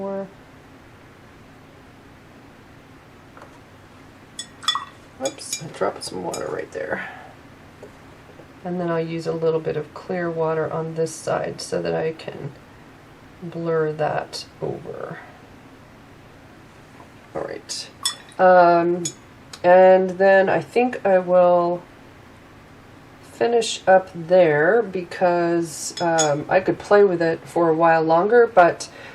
Whoops, I dropped some water right there. And then I'll use a little bit of clear water on this side so that I can blur that over. Alright. And then I think I will finish up there, because I could play with it for a while longer, but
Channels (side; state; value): both; identical; correlation 1.00